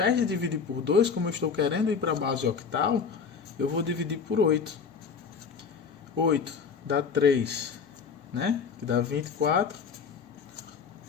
de dividir por 2, como eu estou querendo ir para a base octal, eu vou dividir por 8. 8 dá 3, né? Que dá 24,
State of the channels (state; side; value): quieter; right; 5.9 dB